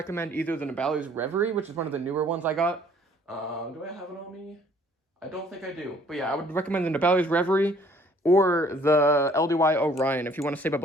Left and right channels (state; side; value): normal; both; correlation 0.58